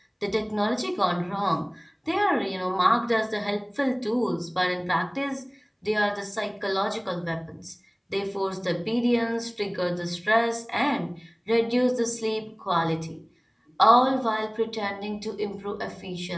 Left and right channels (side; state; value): both; identical; correlation 1.00